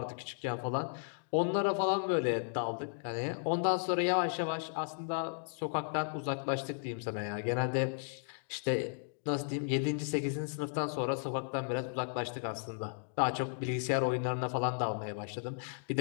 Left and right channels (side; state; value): right; silent; digital silence